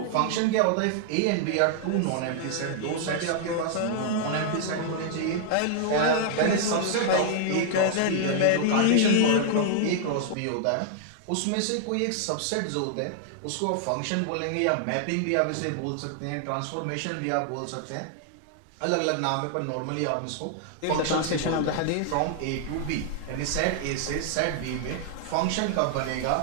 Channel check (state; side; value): different; both; correlation -0.01